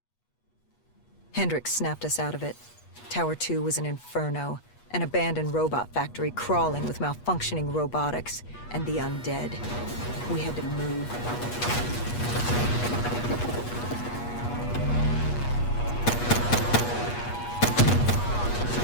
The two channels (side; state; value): right; late; 8.3 ms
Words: Hendricks snapped us out of it. Tower 2 was an inferno, an abandoned robot factory crawling with malfunctioning robotics and the undead. We had to move.